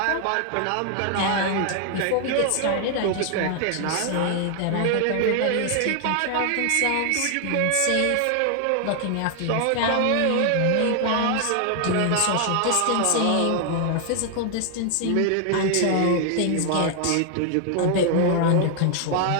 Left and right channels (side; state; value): both; different; correlation 0.00